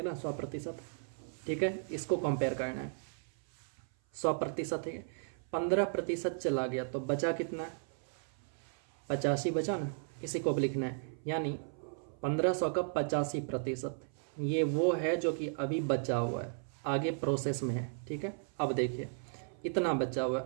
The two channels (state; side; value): silent; left; 54 dB below the other